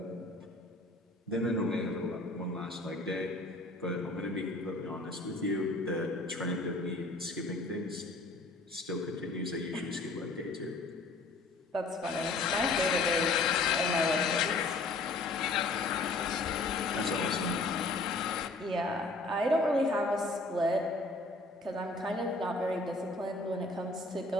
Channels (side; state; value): right; quieter; 3.1 dB